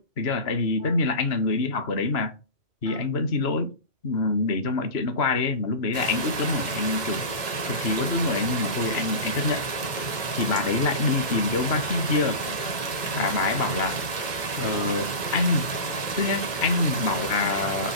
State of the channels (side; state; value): right; late; 2.1 ms